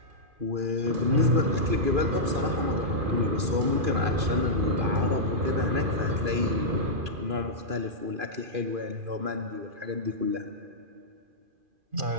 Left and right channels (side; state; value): left; late; 2.4 ms